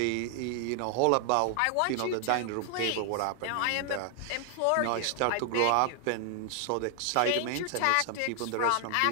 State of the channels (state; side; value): different; both; correlation 0.00